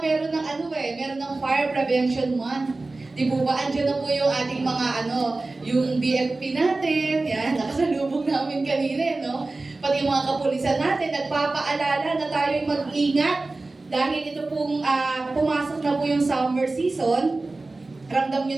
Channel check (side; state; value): left; quieter; 3.3 dB